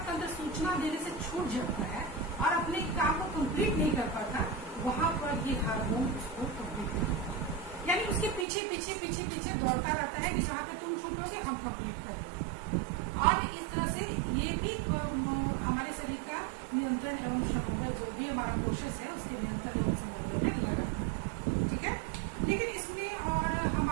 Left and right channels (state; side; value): drops out; left; at 8.5 s